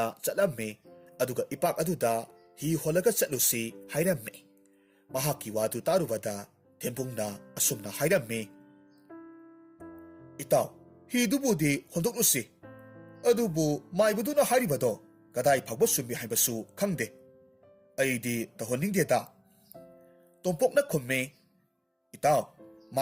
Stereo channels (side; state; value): both; identical; correlation 1.00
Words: ꯆꯠꯂꯝꯃꯤ ꯑꯗꯨꯒ ꯏꯄꯥꯛ ꯑꯗꯨꯗ हि ꯍꯣꯜꯂꯒ ꯆꯠꯂꯨꯁꯤ ꯍꯥꯏꯔꯝꯃꯤ꯫ ꯃꯍꯥꯛꯀꯤ ꯋꯥꯗꯨ ꯇꯥꯔꯨꯕꯗ ꯊꯦꯝꯕꯨꯡꯅ ꯑꯁꯨꯝꯅ ꯍꯥꯏꯔꯝꯃꯤ, ꯏꯇꯥꯎ, ꯍꯤꯗꯨꯕꯨꯗꯤ ꯍꯣꯟꯗꯣꯛꯂꯨꯁꯤ, ꯑꯗꯨꯕꯨ ꯃꯥꯏꯕꯗꯨꯅ ꯍꯥꯏꯔꯤꯕꯗꯣ ꯀꯗꯥꯏ ꯐꯥꯎꯕ ꯆꯨꯝꯃꯤ ꯍꯥꯏꯕꯁꯨ ꯈꯪꯗꯦ꯫ ꯑꯩꯗꯤ ꯇꯧꯍꯟꯅꯤꯡꯗꯦꯗ꯫ ꯇꯣꯝꯄꯣꯛꯅ ꯈꯨꯝꯃꯤ, ꯏꯇꯥꯎ,